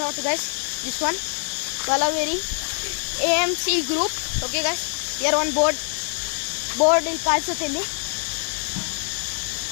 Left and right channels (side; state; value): right; silent; 62 dB below the other